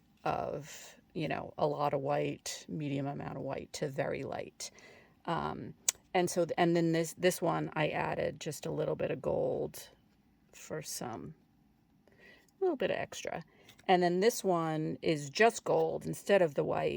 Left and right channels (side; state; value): both; identical; correlation 1.00